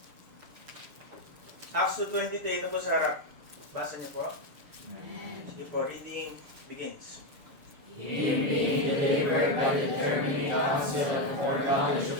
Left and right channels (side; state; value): left; late; 6.9 ms